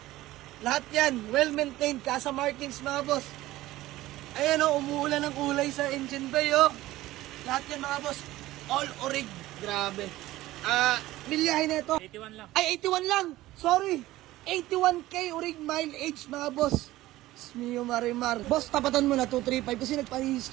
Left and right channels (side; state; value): left; quieter; 16.6 dB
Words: Lahat yan, well-maintained casa markings mga boss. Ayan o, umuulan ng kulay sa engine bay o. Lahat yan mga boss, all orig. Grabe. Milyahin na ito. 81 lang. Ay, 81 lang. Sorry. 81K orig mileage mga boss. Mio Marimar. Boss, tapatan mo na 235 kasi